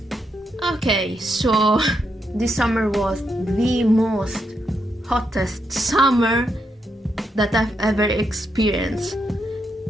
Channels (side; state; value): both; normal; correlation 0.81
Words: Okay, so this summer was the most hottest summer that I've ever experienced.